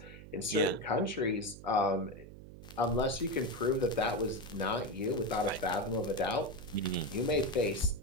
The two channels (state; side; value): noise; right; hum, 16 dB below the sound